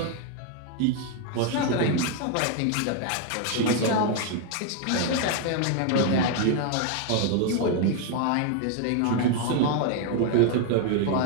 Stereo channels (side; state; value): both; different; correlation 0.00